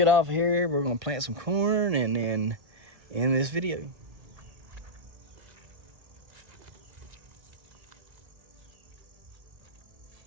get off of here. We're going to plant some corn and then end this video.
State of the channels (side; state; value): left; late; 1.7 ms